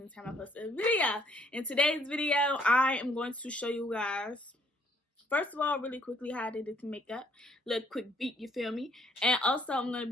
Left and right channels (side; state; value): both; normal; correlation 0.65